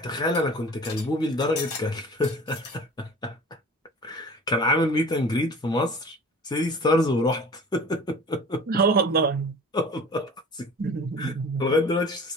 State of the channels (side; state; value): both; normal; correlation 0.42